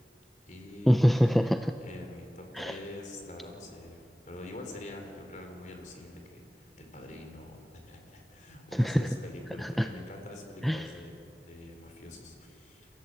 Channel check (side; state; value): both; normal; correlation 0.97